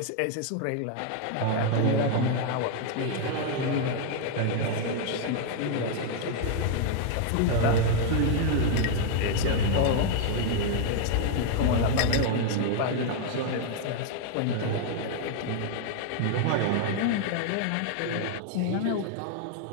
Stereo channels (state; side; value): different; both; correlation 0.00